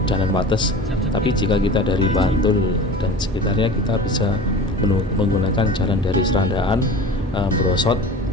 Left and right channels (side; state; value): both; normal; correlation 0.37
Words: Jalan Wates. Tapi jika kita dari Bantul dan sekitarnya, kita bisa menggunakan jalan dari Serandaan, Brosot,